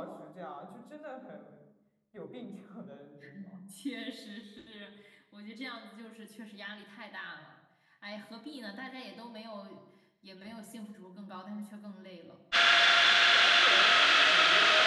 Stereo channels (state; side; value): identical; both; correlation 1.00